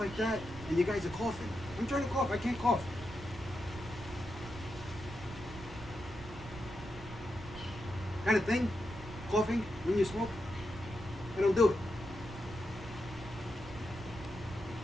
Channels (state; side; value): noise; right; rumble, 13 dB below the sound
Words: that, and you guys are coughing. I'm trying to cough, I can't cough. Kind of thing, coughing when you smoke, I don't do it.